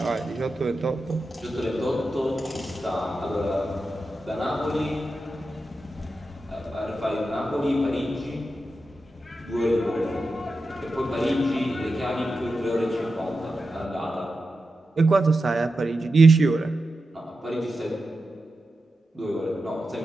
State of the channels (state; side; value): normal; both; correlation 0.90